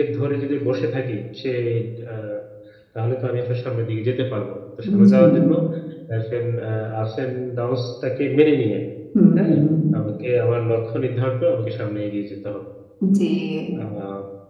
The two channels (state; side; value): identical; both; correlation 1.00